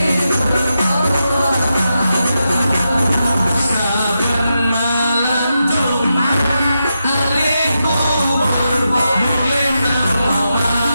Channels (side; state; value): both; inverted; correlation -0.87